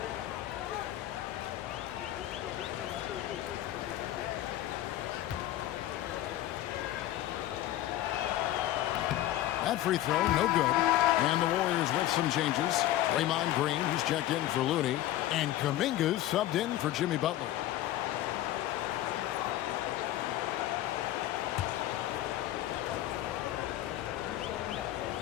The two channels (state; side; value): quieter; right; 14.0 dB